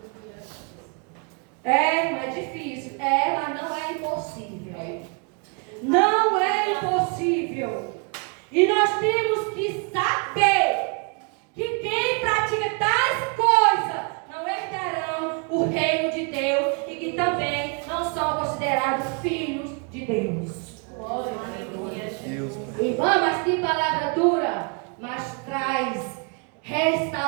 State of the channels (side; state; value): left; quieter; 36.0 dB